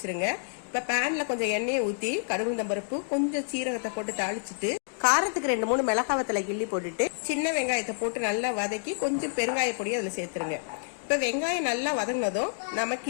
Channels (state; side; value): silent; right; digital silence